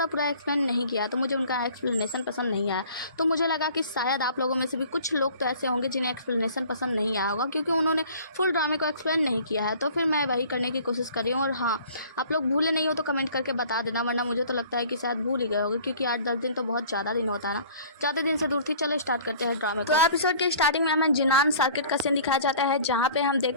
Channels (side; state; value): both; inverted; correlation -0.49